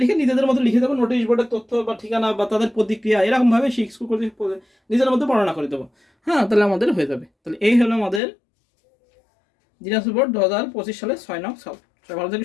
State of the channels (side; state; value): right; drops out; at 8.2 s